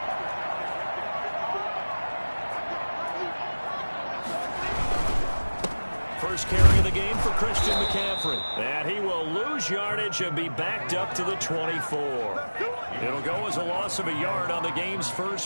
First carry of the game for Christian McCaffrey. And he will lose yardage and be backed up to the 24. It'll go as a loss of a yard on the game's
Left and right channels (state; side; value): inverted; both; correlation -1.00